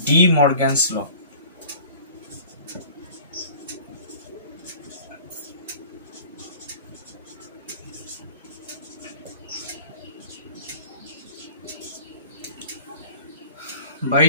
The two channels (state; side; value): inverted; both; correlation -0.45